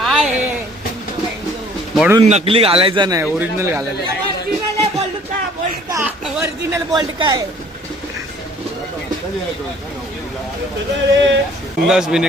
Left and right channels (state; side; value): normal; both; correlation 0.56